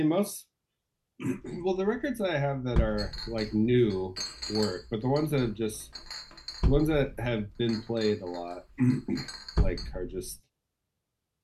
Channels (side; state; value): both; identical; correlation 1.00